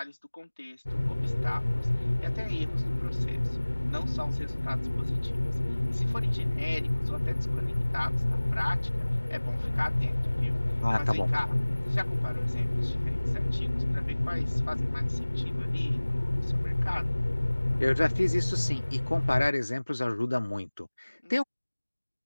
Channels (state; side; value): inverted; both; correlation -1.00